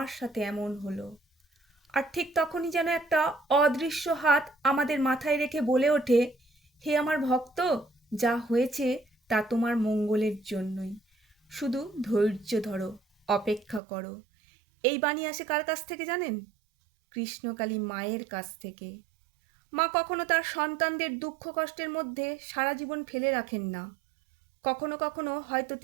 সাথে এমন হলো। আর ঠিক তখনই যেন একটা অদৃশ্য হাত আমাদের মাথায় রেখে বলে ওঠে, হে আমার ভক্ত, যা হয়েছে তা তোমার মঙ্গলের জন্যই। শুধু ধৈর্য ধরো, অপেক্ষা করো। এই বাণী আসে কার কাছ থেকে জানেন? কৃষ্ণকালী মায়ের কাছ থেকে। মা কখনো তার সন্তানদের দুঃখ কষ্টের মধ্যে সারা জীবন ফেলে রাখেন না। কখনো কখনো হয়তো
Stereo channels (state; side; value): drops out; left; at 13.8 s